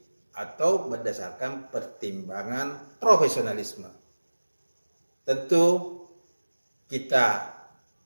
atau berdasarkan pertimbangan profesionalisme. Tentu kita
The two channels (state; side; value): inverted; both; correlation -1.00